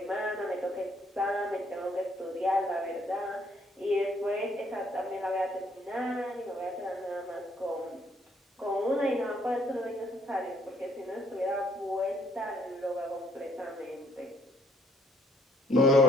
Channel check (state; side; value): normal; both; correlation 0.66